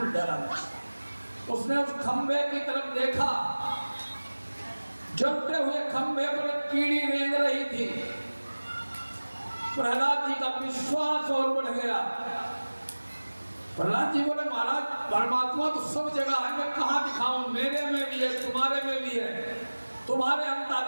डरा नहीं। उसने उस खंभे की तरफ देखा, जलते हुए खंभे पर कीड़ी रेंग रही थी। प्रहलाद जी का विश्वास और बढ़ गया। प्रहलाद जी बोले, महाराज परमात्मा तो सब जगह है, मैं कहाँ दिखाऊं? मेरे में भी है, तुम्हारे में भी है, तुम्हारे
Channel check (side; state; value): both; inverted; correlation -1.00